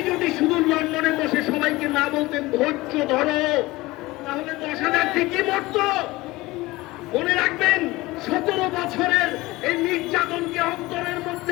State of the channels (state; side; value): quieter; right; 20.1 dB